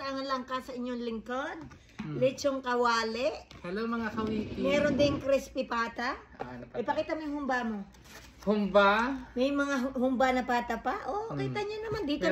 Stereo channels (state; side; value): identical; both; correlation 1.00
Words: lang ka sa inyong lingkod. Lechong kawali. Hello mga kawiti! Meron ding crispy pata. Ipakita mo yung humba mo. Humba? May mga humba na pata pa. Oh, kita nyo naman. Dito